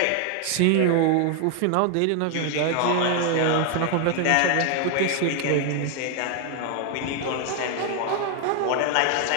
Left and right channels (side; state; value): both; different; correlation 0.00